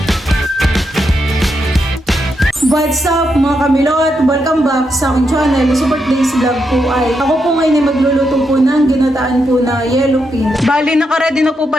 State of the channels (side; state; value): both; normal; correlation 0.82